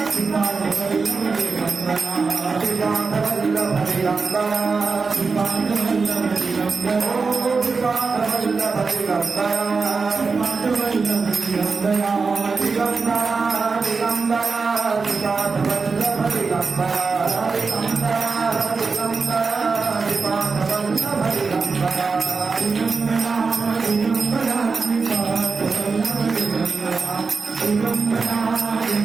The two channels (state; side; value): quieter; left; 4.6 dB